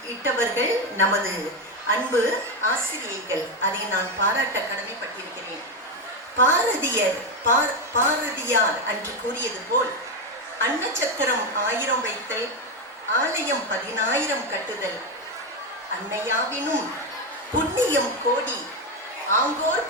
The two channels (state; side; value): normal; both; correlation 0.10